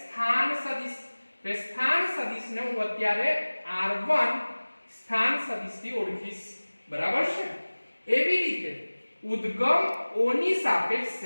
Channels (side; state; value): both; inverted; correlation -1.00